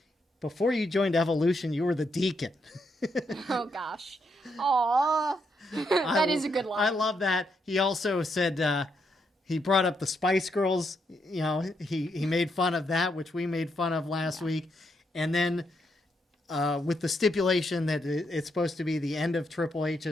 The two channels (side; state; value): both; normal; correlation 0.79